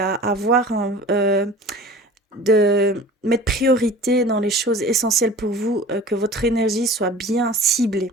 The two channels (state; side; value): normal; both; correlation 0.40